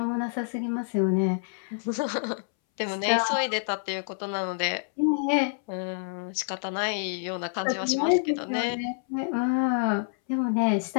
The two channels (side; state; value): right; silent; 60 dB below the other